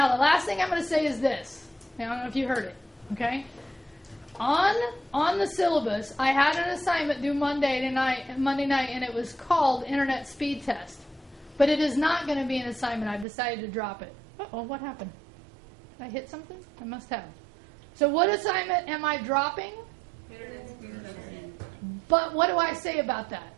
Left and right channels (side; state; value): left; drops out; at 13.2 s